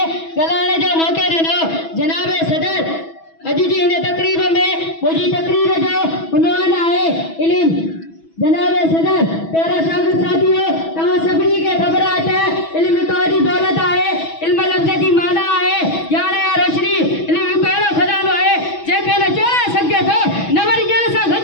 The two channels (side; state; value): right; late; 6.1 ms